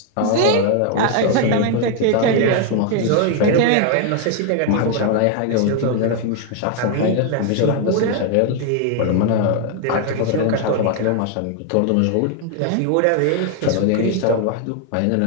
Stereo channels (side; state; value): both; different; correlation 0.01